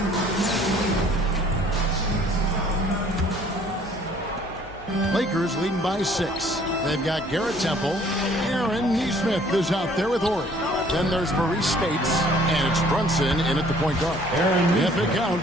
Lakers leading by 6. They've got Garrett Temple. Aaron Nesmith is out there with Horry. Then there's Maurice Spates, and it's Brunson in at the point guard. If it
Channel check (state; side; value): noise; left; hum, 19 dB below the sound